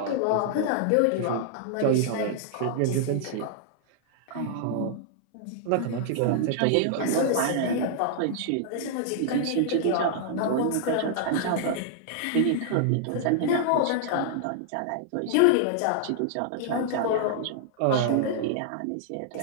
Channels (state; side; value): different; both; correlation -0.01